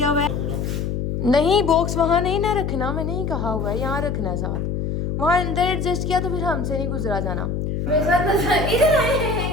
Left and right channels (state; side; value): noise; left; hum, 2 dB below the sound